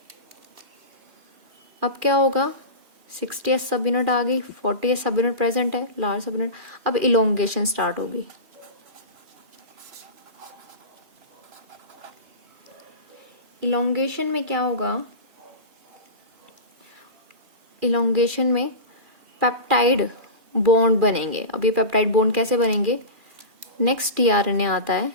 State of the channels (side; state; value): left; late; 2.4 ms